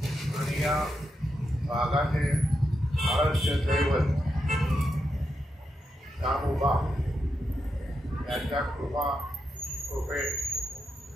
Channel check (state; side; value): normal; both; correlation 0.85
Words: आणि या भागाचे आराध्य दैवत दामोबा यांच्या कृपेन